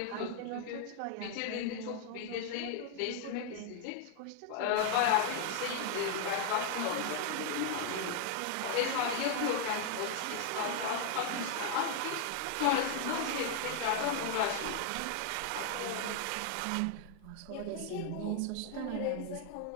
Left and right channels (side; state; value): both; different; correlation 0.00